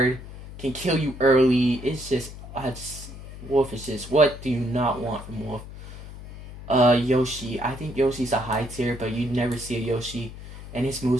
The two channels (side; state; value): left; noise; hum, 13 dB below the sound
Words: Can kill you early. It's just... Wolf is just... What do you not want from Wolf? Yoshi. I think Yoshi's a high tier, but you'd never see a Yoshi. And his